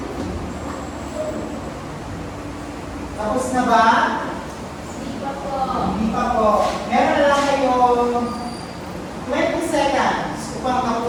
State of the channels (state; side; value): identical; both; correlation 1.00